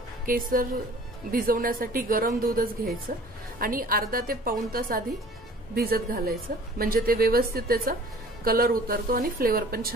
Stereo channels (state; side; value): normal; both; correlation 0.48